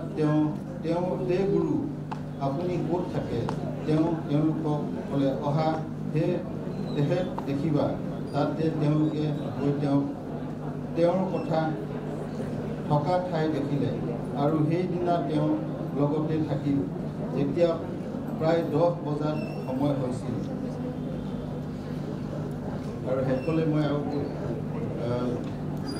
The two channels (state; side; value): identical; both; correlation 1.00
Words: তে গুৰু, আপুনি ক'ত থাকে? তেওঁলোকক ক'লে, অহা তেহেত দেখিবা। তাতে তেওঁলোকে গৈ তেওঁৰ কথা থকা ঠাই দেখিলে, আৰু সেইদিনা তেওঁৰ লগতে থাকিল। যেতিয়া প্ৰায় 10 বজাত সময় হৈছিল। আৰু শেষলৈ মই